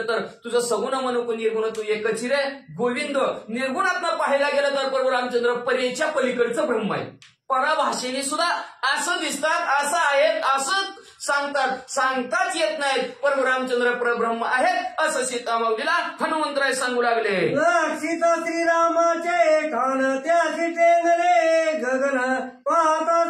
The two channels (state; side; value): identical; both; correlation 1.00